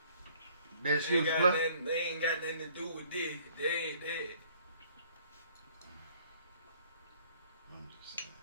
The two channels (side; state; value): both; inverted; correlation -0.58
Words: They ain't got nothing to do with this. They ain't that. I'm just